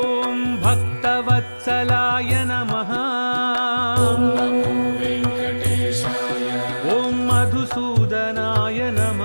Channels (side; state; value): both; inverted; correlation -1.00